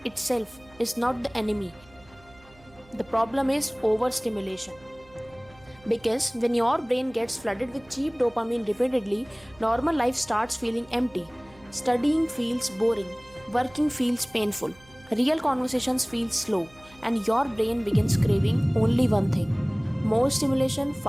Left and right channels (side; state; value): right; noise; hum, 26 dB below the sound